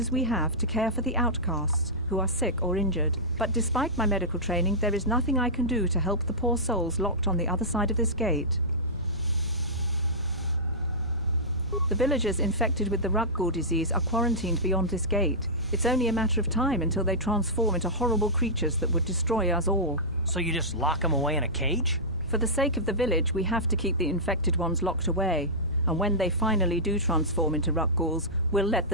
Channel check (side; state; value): both; normal; correlation -0.13